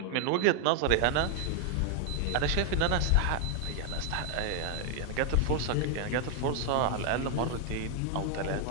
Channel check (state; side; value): different; both; correlation 0.00